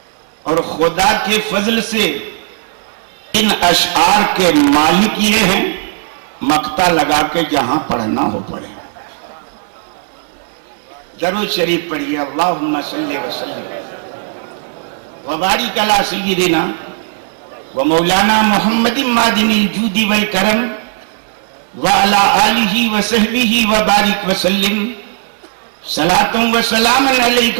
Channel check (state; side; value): silent; left; 70 dB below the other